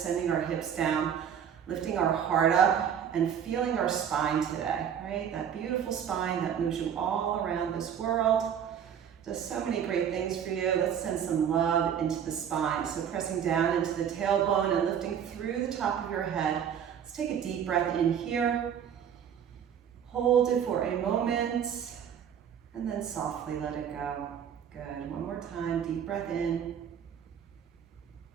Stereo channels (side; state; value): left; quieter; 8.5 dB